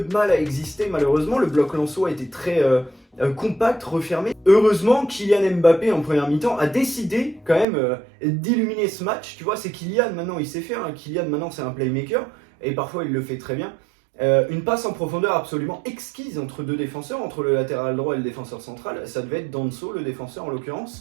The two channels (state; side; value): drops out; left; at 7.7 s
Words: de mal à exister, malheureusement, le bloc lensois était très compact, refermé. Heureusement, Kylian Mbappé en première mi-temps a décidé quand même d'illuminer ce match, tu vois, c'est Kylian maintenant, il sait faire, hein. Kylian maintenant c'est un playmaker, et parfois il le fait très bien. Une passe en profondeur absolument exquise entre deux défenseurs, entre le latéral droit et le défenseur central, ça devait être Danso, le défenseur en